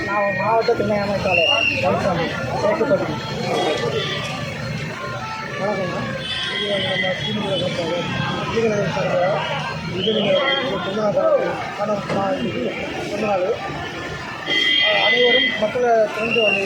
நான் மாவட்ட துணை அமைப்பாளர் கவுன்சாமி சேர்க்கப்பட்டி. வணக்கம்ண்ணா. இது நம்ம ஸ்ரீநிதி இது நீங்கள் சொன்னாங்க அனைவரும் மக்களை திறந்து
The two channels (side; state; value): both; identical; correlation 1.00